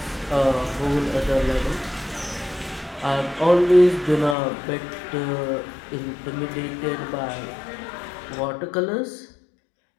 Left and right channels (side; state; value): right; drops out; at 4.4 s